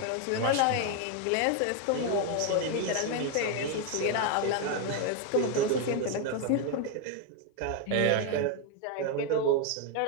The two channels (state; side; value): different; both; correlation 0.01